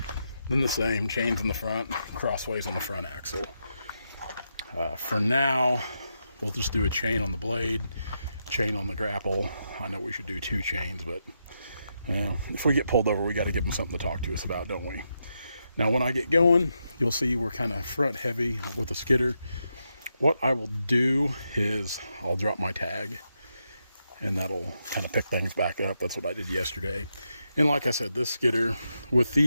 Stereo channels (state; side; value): inverted; both; correlation -0.84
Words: then the same, chains in the front, crossways on the front axle. For now, we'll just do a chain on the blade, chain on the grapple. I know we should do 2 chains, but if we get pulled over, we got to give them something to talk to us about, don't we? Now, when I get going, you'll see we're kind of front heavy with the skidder. What I will do is I'll drop my tag, and that'll kind of pick things back up. That's what I did yesterday. And like I said, this skidder, with